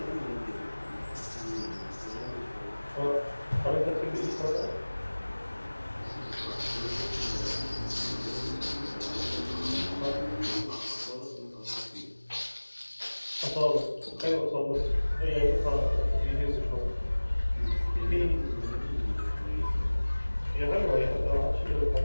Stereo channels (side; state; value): both; inverted; correlation -1.00